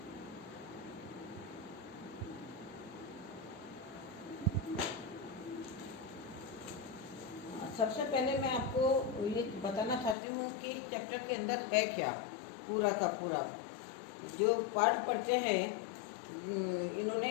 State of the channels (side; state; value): right; drops out; at 10.2 s